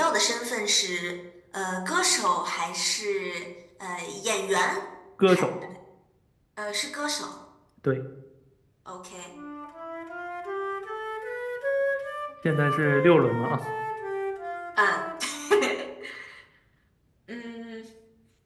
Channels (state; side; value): identical; both; correlation 1.00